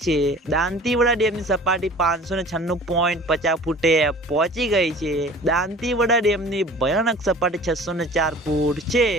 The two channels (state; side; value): normal; both; correlation 0.44